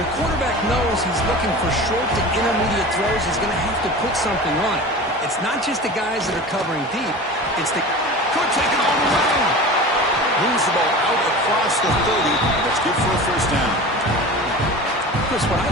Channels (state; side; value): normal; both; correlation 0.34